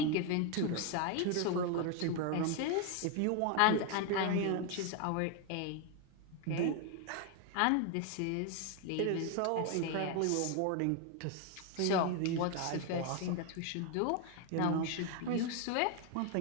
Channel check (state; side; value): different; both; correlation 0.01